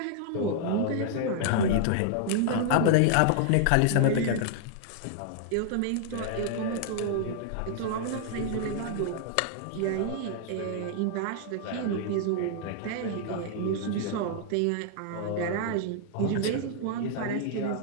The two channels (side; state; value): both; different; correlation -0.01